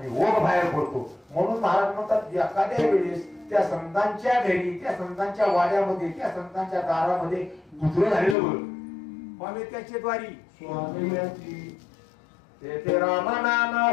ओघ बाहेर पडतो म्हणून महाराज म्हणतात एखाद्या वेळेस त्या संतांच्या घरी त्या संतांच्या वाड्यामध्ये त्या संतांच्या दारामध्ये गुजर झालेलं बघ स्वामी त्याचे द्वारी स्वामी ते राम नाम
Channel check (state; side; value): drops out; right; at 8.3 s